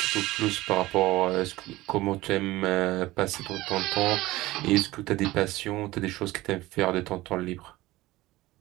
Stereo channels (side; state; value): left; quieter; 18.4 dB